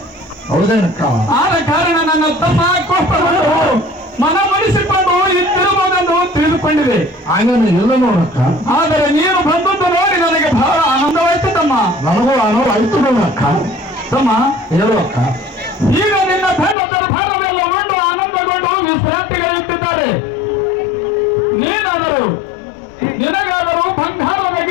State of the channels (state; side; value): drops out; right; at 16.8 s